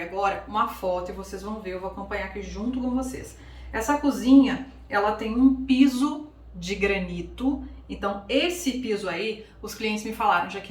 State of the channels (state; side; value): identical; both; correlation 1.00